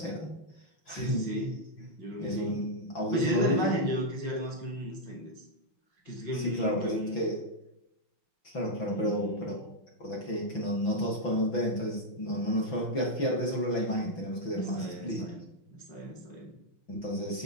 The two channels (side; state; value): right; late; 6.0 ms